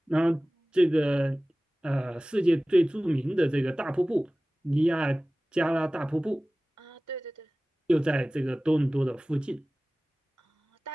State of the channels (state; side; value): normal; both; correlation 0.98